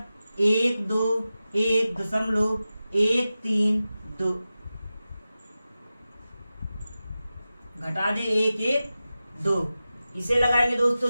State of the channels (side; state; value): both; inverted; correlation -0.94